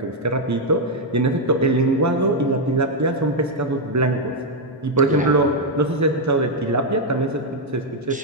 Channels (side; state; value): both; normal; correlation 0.00